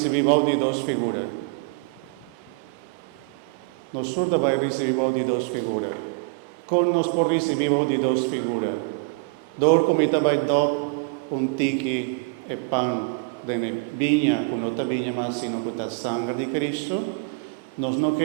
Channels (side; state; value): left; quieter; 32.2 dB